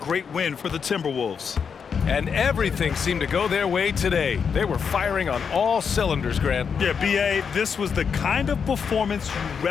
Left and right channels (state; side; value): quieter; right; 6.4 dB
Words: win for the Timberwolves. And everything seemed to go their way today. They were firing on all cylinders, Grant. Yeah, B.A., this was the kind of performance you